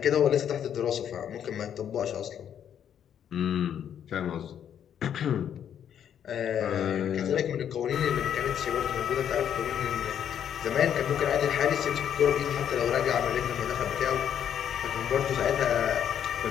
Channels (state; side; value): quieter; right; 9.2 dB